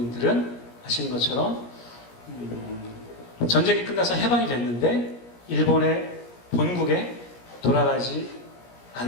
아시는 것처럼 전쟁이 끝나서 해방이 됐는데 일본의 본국에 돌아가지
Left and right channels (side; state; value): right; late; 17 ms